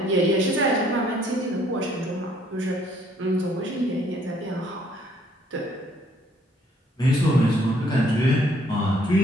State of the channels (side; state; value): both; normal; correlation 0.64